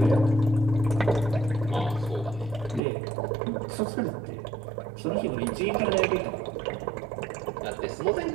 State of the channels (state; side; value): drops out; left; at 2.8 s